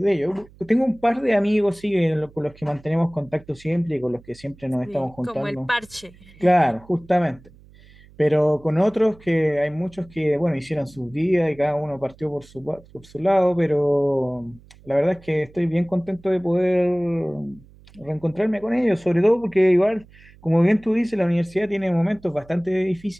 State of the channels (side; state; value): right; noise; hum, 25 dB below the sound